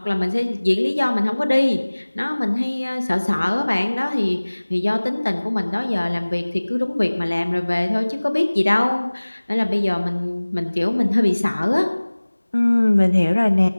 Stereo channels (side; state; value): both; inverted; correlation -1.00